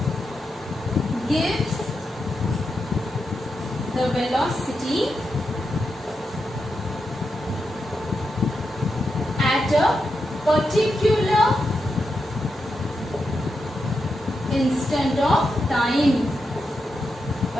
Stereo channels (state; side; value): normal; both; correlation 0.86